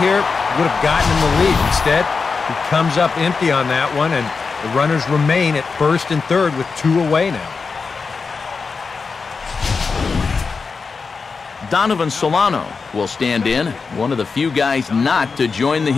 here would have gotten him the lead. Instead, he comes up empty on that one, and the runners remain at first and third with 2 away now. Donovan Solano will stand in, one of the few guys not to join the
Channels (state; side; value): quieter; right; 4.8 dB